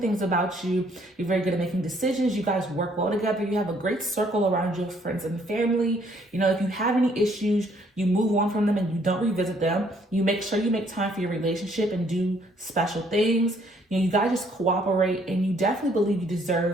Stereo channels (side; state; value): both; normal; correlation 0.65